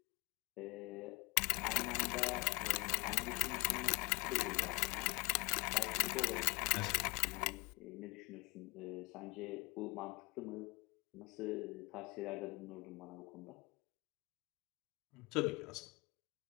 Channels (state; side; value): quieter; right; 26.3 dB